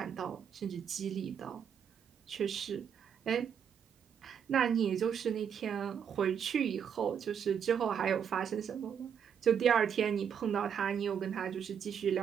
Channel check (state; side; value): quieter; left; 7.8 dB